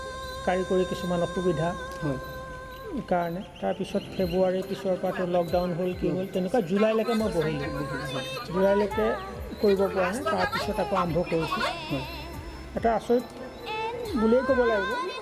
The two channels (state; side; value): identical; both; correlation 1.00